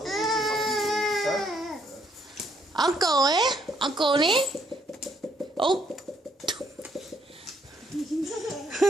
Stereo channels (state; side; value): normal; both; correlation 0.70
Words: Uncle, eh? Uncle, eh? Oh.